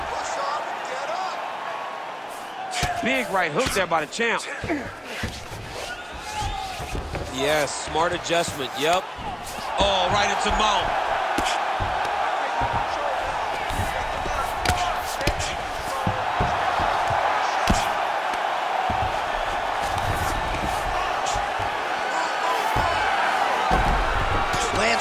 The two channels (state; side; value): identical; both; correlation 1.00